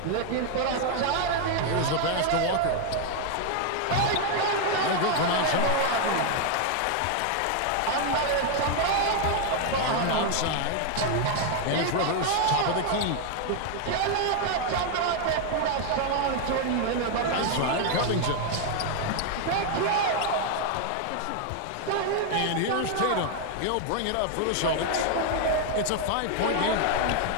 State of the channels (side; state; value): both; different; correlation 0.00